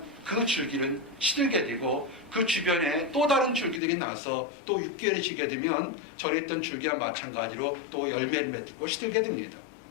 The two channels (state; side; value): drops out; right; at 3.8 s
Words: 그 줄기는 시들게 되고 그 주변에 또 다른 줄기들이 나서 또 6개월이 지게 되면 전에 있던 줄기와 마찬가지로 또 열매를 맺고 시들게 됩니다.